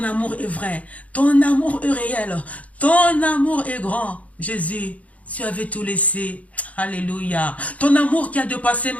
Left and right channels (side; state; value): right; late; 0.068 ms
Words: amour est vrai, ton amour est réel, ton amour est grand. Jésus, tu avais tout laissé. Alléluia. Ton amour qui a dépassé